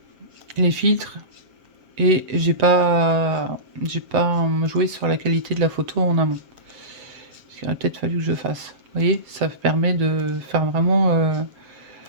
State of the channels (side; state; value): left; late; 7.4 ms